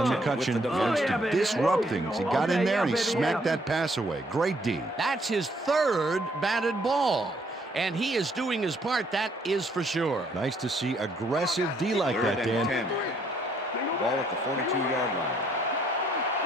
McCutcheon wants to disrupt things. He got in there and he smacked that pass away. Great D. That's his third batted ball, and he is doing his part, that is for sure. Nice to see aggressive D like Third that, and Dan. 10. Ball at the 42-yard line.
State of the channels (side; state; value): both; normal; correlation 0.68